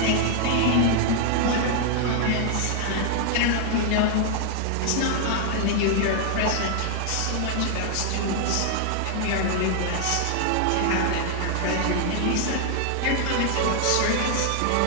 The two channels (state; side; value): different; both; correlation 0.00